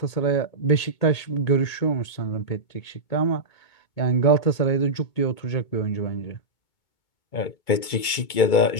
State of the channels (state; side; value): late; right; 2.2 ms